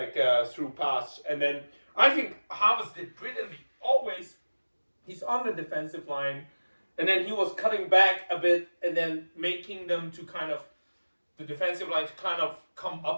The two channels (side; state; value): both; inverted; correlation -1.00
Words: a through pass, and then I think Havertz did brilliantly. Always, he's on the defensive line, and then he was cutting back a bit, and then making them to kind of the defensive line to kind of come